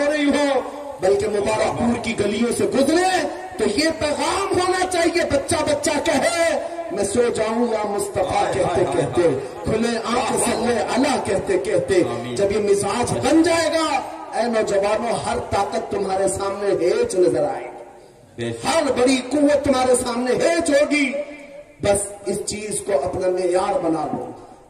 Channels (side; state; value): both; identical; correlation 1.00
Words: رہی ہو بلکہ مبارک پور کی گلیوں سے گزرے تو یہ پیغام ہونا چاہیے. بچہ بچہ کہے میں سو جاؤں یا مصطفیٰ کہتے کہتے کھلے آنکھ صلی اللہ کہتے کہتے. جب یہ مزاج بن جائے گا اے نوجوانوں ہر طاقت تمہارے سامنے ہیچ نظر آئے گی. ہر بڑی قوت تمہارے سامنے ہیچ ہوگی. بس اس چیز کو اپنا معیار بنا لو.